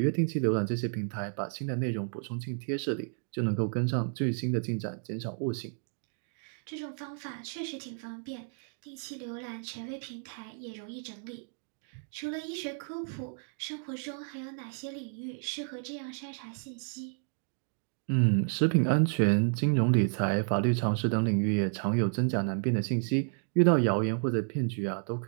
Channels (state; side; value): silent; left; 57 dB below the other